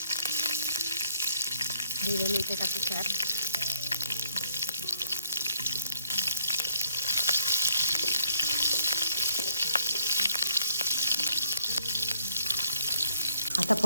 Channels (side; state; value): both; inverted; correlation -0.69